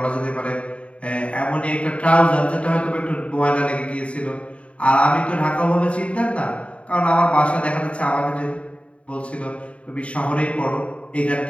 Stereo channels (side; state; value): right; late; 0.063 ms